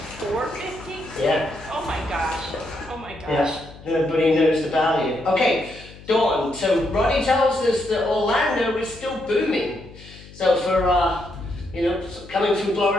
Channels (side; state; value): left; noise; hum, 19 dB below the sound